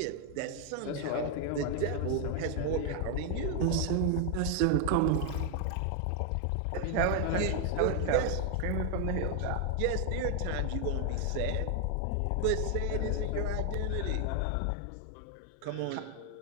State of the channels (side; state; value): both; different; correlation 0.00